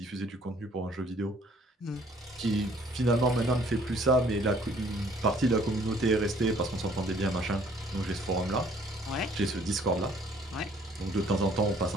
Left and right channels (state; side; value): normal; both; correlation 0.58